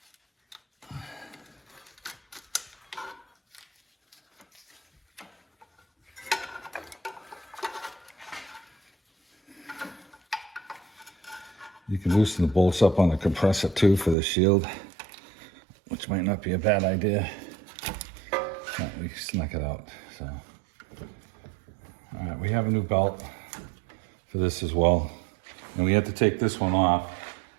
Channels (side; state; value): left; drops out; at 14.2 s